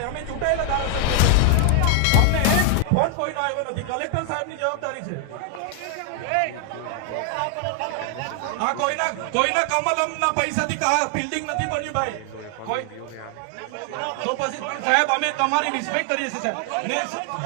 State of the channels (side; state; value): both; different; correlation 0.00